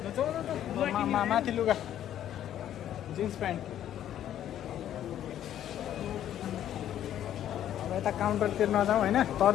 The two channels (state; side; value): quieter; right; 11.1 dB